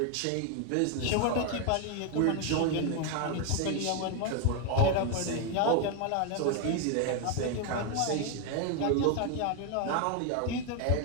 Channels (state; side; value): different; both; correlation 0.01